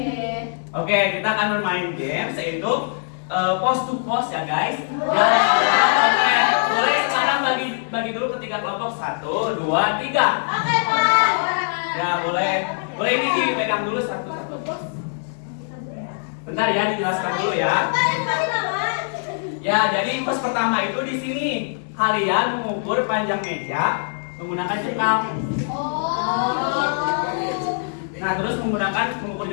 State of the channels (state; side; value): silent; right; digital silence